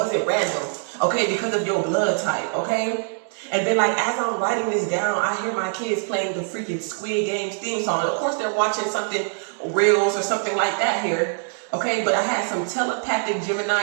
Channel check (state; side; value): silent; left; 55 dB below the other